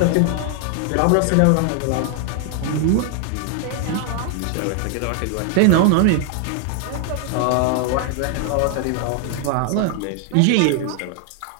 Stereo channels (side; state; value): both; different; correlation 0.00